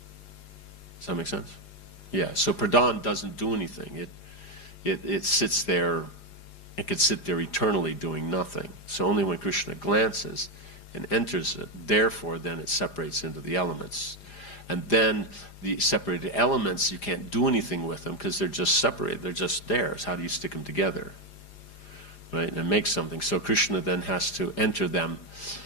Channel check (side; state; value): right; late; 4.9 ms